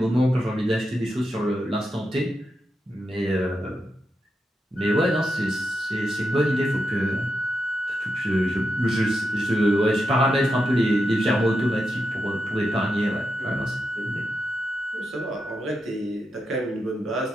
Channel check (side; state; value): both; normal; correlation 0.86